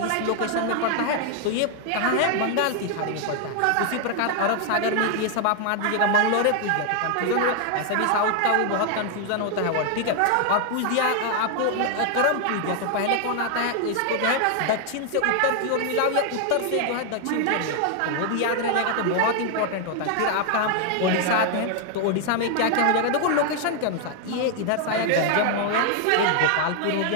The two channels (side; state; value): both; different; correlation 0.00